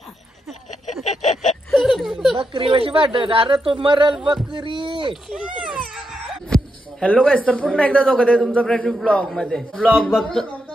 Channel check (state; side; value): normal; both; correlation 0.84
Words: बकरी कशी वाटत. अरे तो मरल बकरी. हॅलो गाईस, तर पुन्हा एकदा दोघं आहे तुमचा फ्रेंड ब्लॉग मध्ये. ब्लॉग